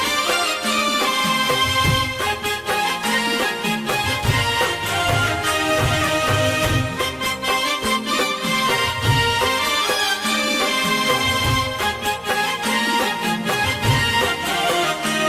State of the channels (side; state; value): both; identical; correlation 1.00